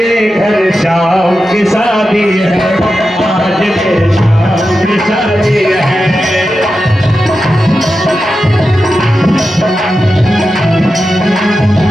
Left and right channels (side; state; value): both; normal; correlation 0.91